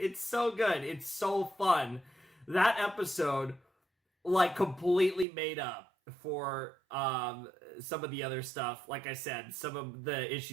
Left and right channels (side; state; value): left; drops out; at 5.2 s